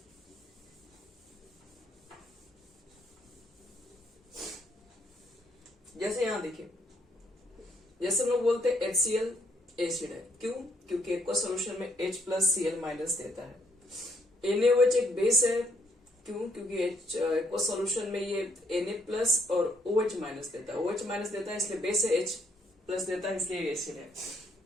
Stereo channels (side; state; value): both; normal; correlation 0.70